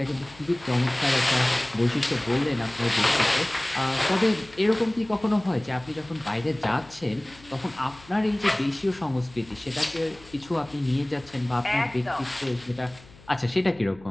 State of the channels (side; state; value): left; noise; hum, 23 dB below the sound